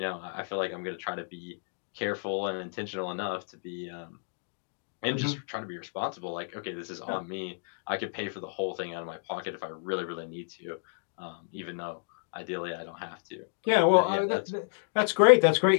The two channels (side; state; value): right; silent; digital silence